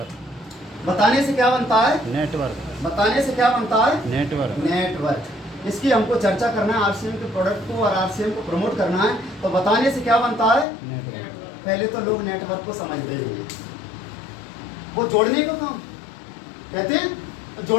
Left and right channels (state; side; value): drops out; right; at 10.7 s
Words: बताने से क्या बनता है? नेटवर्क। बताने से क्या बनता है? नेटवर्क। नेटवर्क। इसकी हमको चर्चा करना है, आरसीएम के प्रोडक्ट को और आरसीएम को प्रमोट करना है, तो बताने से क्या बनता है? नेटवर्क। पहले तो लोग नेटवर्क को समझते ही नहीं, वो जोड़ने का काम कहते हैं,